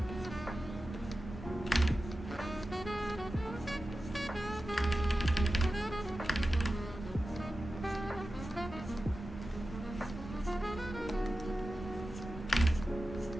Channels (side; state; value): both; normal; correlation 0.93